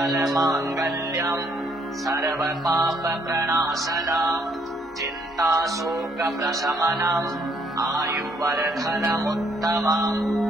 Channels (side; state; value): both; normal; correlation 0.68